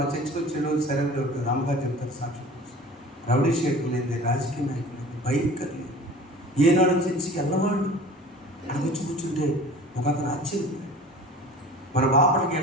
చర్చకు వచ్చేలో సరైన దొరుకుతుంది. అమ్మగారు చెప్తారు సాక్షి, రౌడీ షేట్లు లేదు, రాజకీయ నాయకులు లేదు, భయంకర్ లేదు. ఏనాడు చర్చికి వెళ్ళవాళ్ళు అక్కడ వచ్చి కూర్చుంటే ఒక అతను ఆశ్చర్యం. మన బాపటికి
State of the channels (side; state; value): both; normal; correlation 0.41